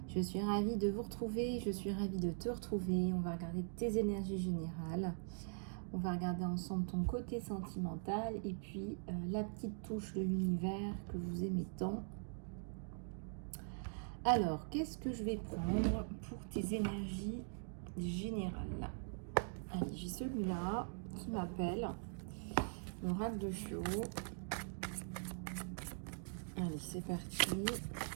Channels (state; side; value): silent; left; digital silence